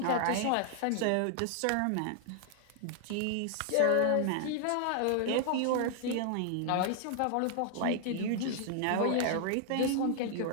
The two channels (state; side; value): different; both; correlation 0.00